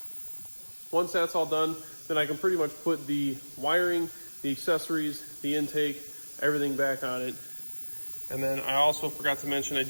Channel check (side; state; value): both; inverted; correlation -1.00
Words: Once that's all done, then I can pretty much put the wiring, the accessories, the intake, everything back on it. And then I also forgot to mention I